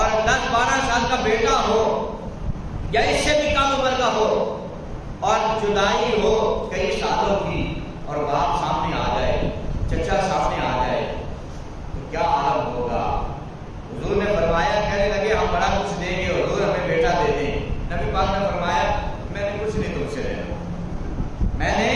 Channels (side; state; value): both; identical; correlation 1.00